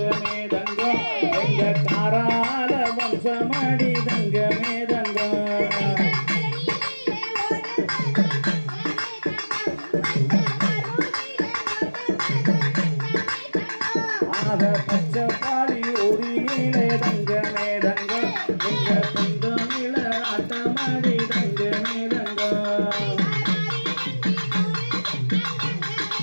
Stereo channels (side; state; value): both; inverted; correlation -1.00